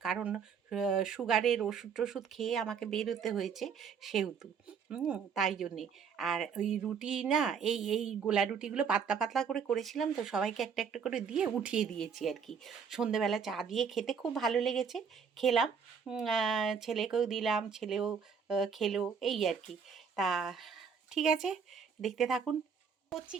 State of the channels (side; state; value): left; quieter; 6.5 dB